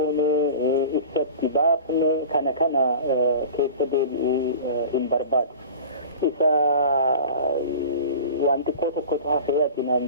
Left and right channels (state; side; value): inverted; both; correlation -0.36